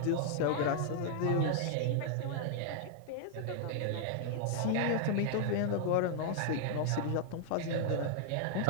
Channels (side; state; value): both; different; correlation -0.01